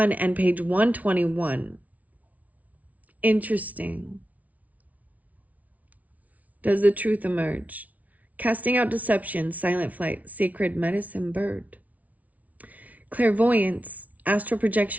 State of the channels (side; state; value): left; late; 0.071 ms